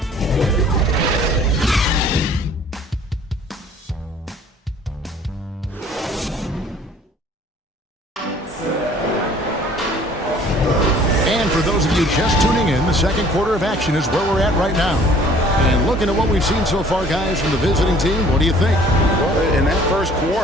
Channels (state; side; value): normal; both; correlation 0.54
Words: And for those of you just tuning in, the second quarter of action is where we're at right now. And looking at what we've seen so far, guys, from the visiting team, what do you think? Well, in that first